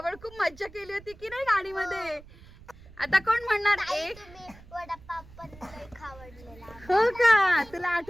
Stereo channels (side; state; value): right; noise; rumble, 21 dB below the sound